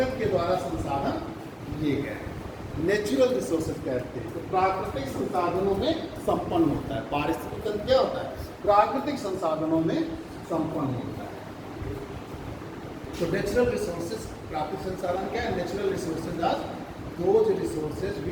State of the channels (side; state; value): both; identical; correlation 1.00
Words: के द्वारा संसाधन लिए गए हैं, नेचुरल रिसोर्सेज कहते हैं। तो प्राकृतिक संसाधनों में संपन्न होता है। पारिस्थितिकी तंत्र क्या होता है, प्राकृतिक संसाधनों में संपन्न होता है। तो नेचुरल रिसोर्सेज, प्राकृतिक संसाधन क्या है, natural resources are those resources